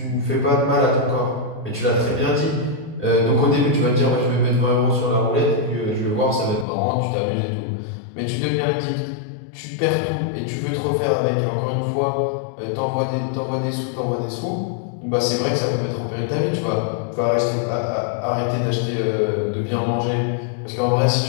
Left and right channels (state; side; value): drops out; right; at 6.7 s